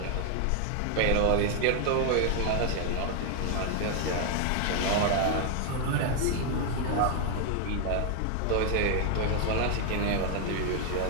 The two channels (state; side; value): different; both; correlation 0.00